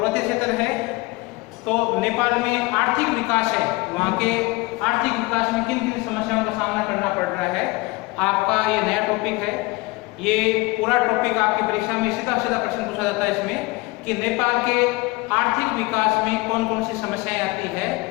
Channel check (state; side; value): quieter; right; 23.8 dB